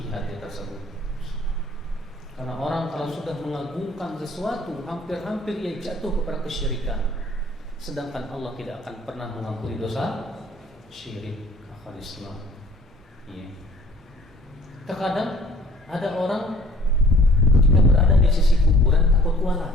hati tersebut. Karena orang kalau sudah mengagungkan sesuatu, hampir-hampir ia jatuh kepada kesyirikan. Sedangkan Allah tidak akan pernah mengampuni dosa syirik, akal Islam. Ya. Terkadang ada orang ketika berada di sisi kuburan takut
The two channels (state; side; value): normal; both; correlation 0.55